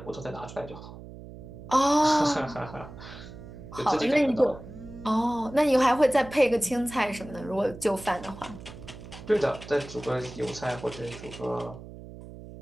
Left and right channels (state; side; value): noise; right; hum, 15 dB below the sound